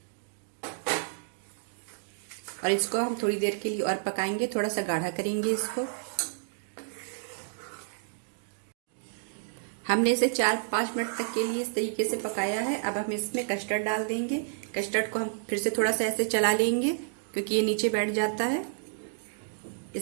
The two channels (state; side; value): silent; left; digital silence